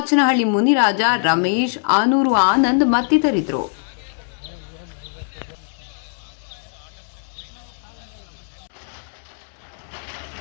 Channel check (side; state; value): right; silent; digital silence